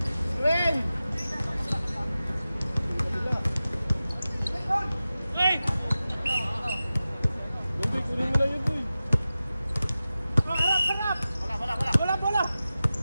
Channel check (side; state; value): both; inverted; correlation -0.94